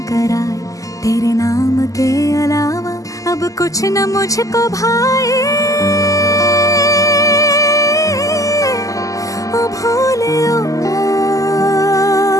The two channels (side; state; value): right; late; 0.16 ms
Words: तेरे नाम के अलावा अब कुछ न मुझको भाए ओ भोले